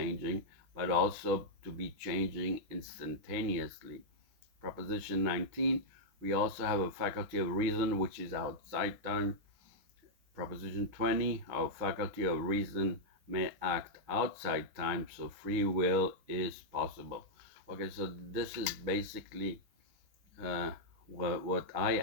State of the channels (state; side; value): late; left; 6.5 ms